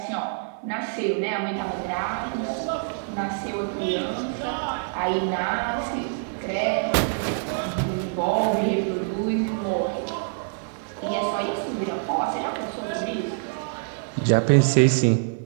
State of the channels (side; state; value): left; silent; 61 dB below the other